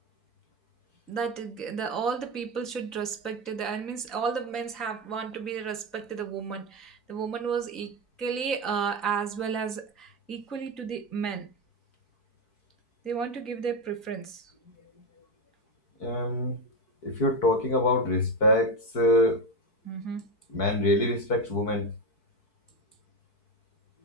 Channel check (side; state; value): right; late; 3.9 ms